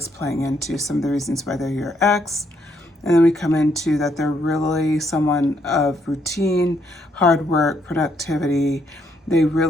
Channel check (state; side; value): normal; both; correlation 0.73